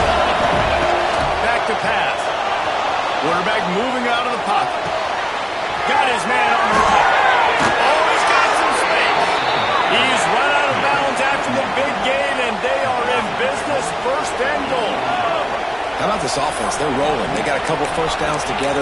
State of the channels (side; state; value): both; identical; correlation 1.00